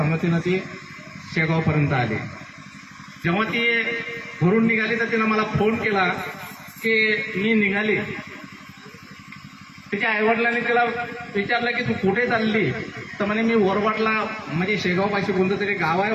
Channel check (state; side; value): identical; both; correlation 1.00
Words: ती शेगावपर्यंत आली. जेव्हा ती घरून निघाली तर तिनं मला फोन केला की मी निघाली. तिच्या आईवडिलांनी तिला विचारलं की तू कुठे चालली? तर म्हणे मी वरवटला, म्हणजे शेगावपाशी कोणतं तरी गाव आहे